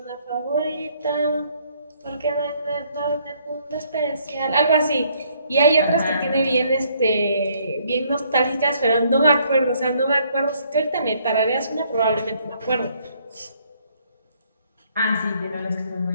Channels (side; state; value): both; inverted; correlation -0.66